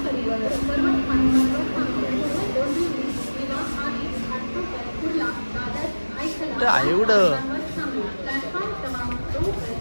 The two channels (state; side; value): inverted; both; correlation -1.00